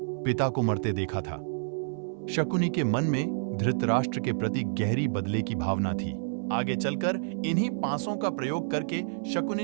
पिता को मरते देखा था। शकुनी के मन में धृतराष्ट्र के प्रति गहरी बदले की भावना थी। आगे चलकर इन्हीं पासों का प्रयोग करके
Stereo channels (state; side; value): silent; left; 59 dB below the other